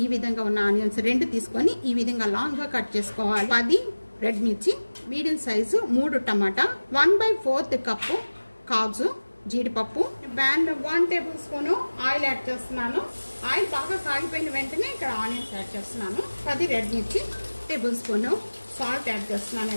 ఈ విధంగా ఉన్న ఆనియన్స్ రెండు తీసుకొని ఈ విధంగా లాంగ్ గా కట్ చేసుకోవాలి 10 రెడ్ మిర్చి మీడియం సైజ్ 3 టమాటా 1/4 కప్పు కాజు జీడిపప్పు ప్యాన్ లో 1 టేబుల్ స్పూన్ ఆయిల్ యాడ్ చేస్తున్నాను ఆయిల్ బాగా కాగిపోయిన వెంటనే ఇక్కడ ఆనియన్స్ యాడ్ చేస్తున్నాను 10 రెడ్ మిర్చి టేబుల్ స్పూన్ సాల్ట్ యాడ్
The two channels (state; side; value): inverted; both; correlation -1.00